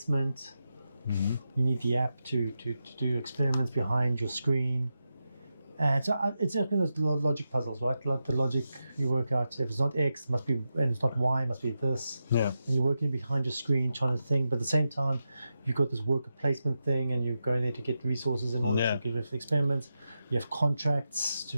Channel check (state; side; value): inverted; both; correlation -0.89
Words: Mm-hmm. You need the app to do experiments behind your screen. And so it's like those logic puzzles, right? Like the logic you work out. If it's not X, it must be, and it's not Y, it must be this. Yeah. And you're working behind your screen trying to think, but at the same time, you've got this worker placement thing, and you're going there to get resources in order to get rid of the experiments. You have contracts